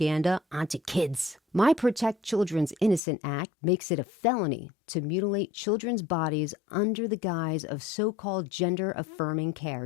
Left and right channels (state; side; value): drops out; right; at 3.0 s